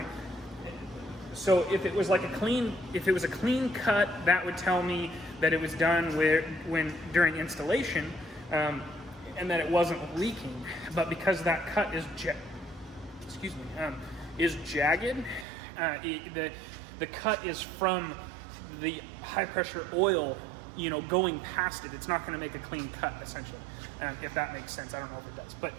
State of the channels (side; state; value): left; drops out; at 15.5 s